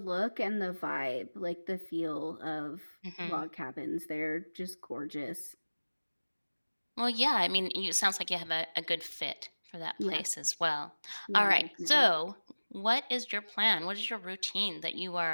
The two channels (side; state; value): both; inverted; correlation -1.00